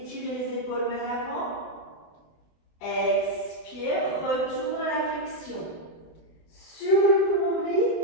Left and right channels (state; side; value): late; right; 24 ms